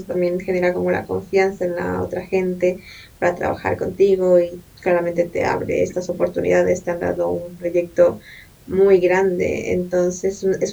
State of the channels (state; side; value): identical; both; correlation 1.00